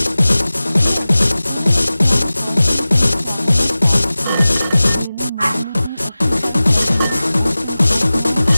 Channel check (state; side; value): inverted; both; correlation -0.97